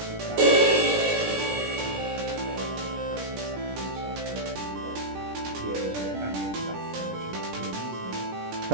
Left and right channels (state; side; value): late; left; 17 ms